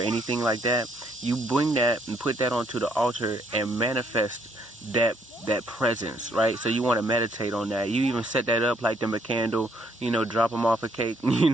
like that, you bring that and put that onto the altar and manifest that presence, right? So you want to meditate on that. You even set that up, light them a candle, you know, drop them off a cake, you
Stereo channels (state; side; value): normal; both; correlation 0.69